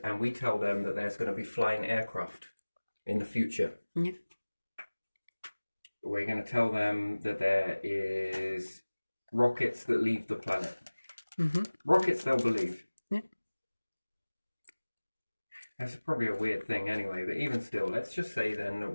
we tell them that there's going to be flying aircraft in the future. Yeah. We're going to tell them that there is rockets that leave the planet. Mm-hmm. Rockets they'll believe. Yeah. That's probably a weird thing anyway, but even still, let's just say then that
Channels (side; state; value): both; inverted; correlation -1.00